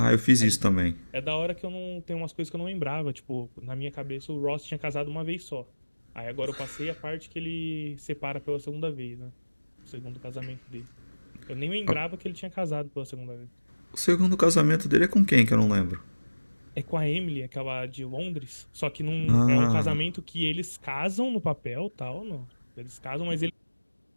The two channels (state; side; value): inverted; both; correlation -1.00